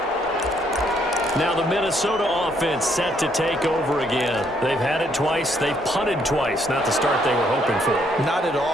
Now the Minnesota offense set to take over again. They've had it twice. They've punted twice. Not the start they were hoping for. Not at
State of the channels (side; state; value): both; normal; correlation 0.70